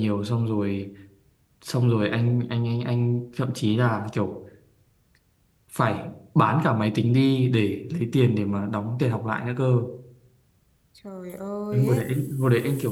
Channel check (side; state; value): both; identical; correlation 1.00